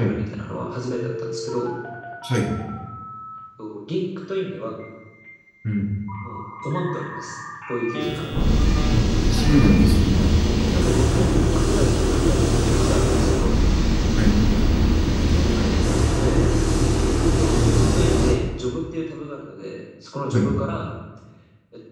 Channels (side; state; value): both; identical; correlation 1.00